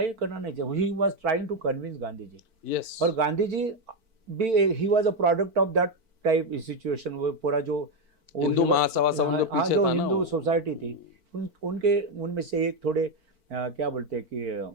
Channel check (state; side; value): late; left; 4.5 ms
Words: करना नहीं चाहिए। He was trying to convince Gandhi ji. yes. और गांधी जी भी he was a product of that type situation. वो पूरा जो हिंदू महासभा जो हिंदू सोसाइटी थी, उनमें से एक थोड़े क्या बोलते हैं कि